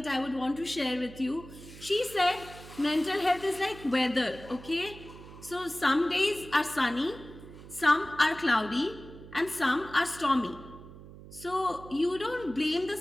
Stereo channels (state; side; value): noise; right; hum, 16 dB below the sound